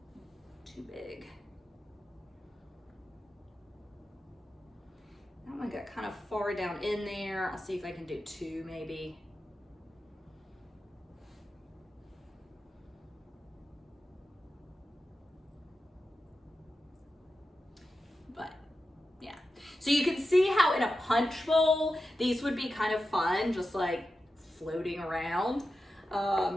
too big. That one got kind of far down in there. I'll see if I can do two maybe. But yeah. So you can see how in a punch bowl, these would be kind of fun, just like floating around.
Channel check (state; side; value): normal; both; correlation 0.91